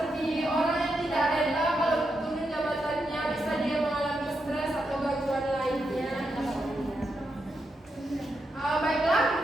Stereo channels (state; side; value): normal; both; correlation 0.84